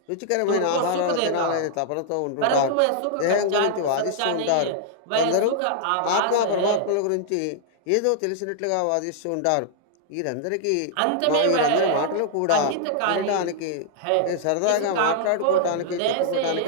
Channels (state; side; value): different; both; correlation -0.01